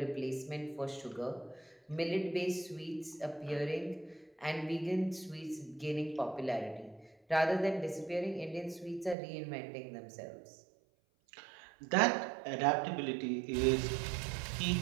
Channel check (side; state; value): left; drops out; at 9.2 s